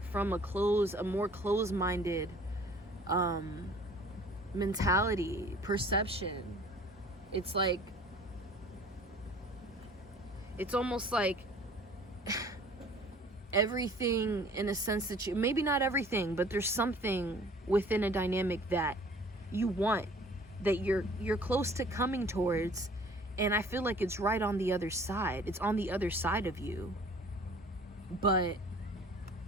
from a more closed-minded mentality, perception. It's like, it's almost like everything, in a sense that you, maybe not everything, but there's something within a dynamic that you want, that you're close to coming towards, and I feel like it's right on the other side. It's on the other side of you, but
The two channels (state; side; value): normal; both; correlation 0.50